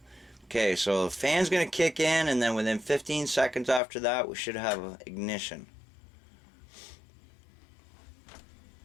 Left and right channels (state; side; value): drops out; right; at 3.8 s